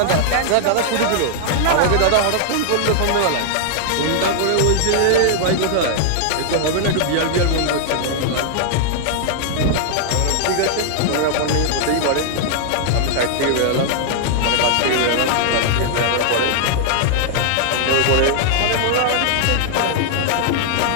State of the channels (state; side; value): different; both; correlation -0.01